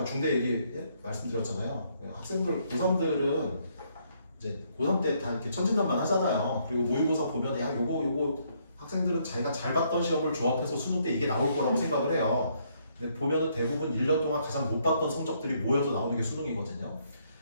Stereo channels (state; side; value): inverted; both; correlation -0.71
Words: 중대 얘기 말씀드렸잖아요. 학생들 고3들은 이제 고3 때 다 이렇게 천진난만 하잖아요. 그리고 모의고사 보면 야 요거 학생들은 자기가 잘 봤던 시험을 조합해서 수능 때 이게 나올 거라고 생각을 해요. 근데 보면은 대부분 1년 동안 가장 못 봤던 성적들이 모여서 나오는 게 수능이거든요.